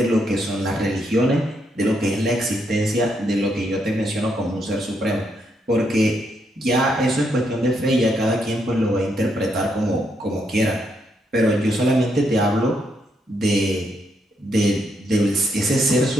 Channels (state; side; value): normal; both; correlation 0.77